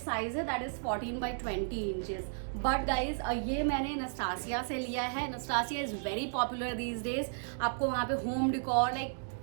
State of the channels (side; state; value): left; silent; digital silence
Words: है that is 14x20 inches. But guys ये मैंने नस्टासिया से लिया है. Nestasia is very popular these days. आपको वहाँ पे home decor like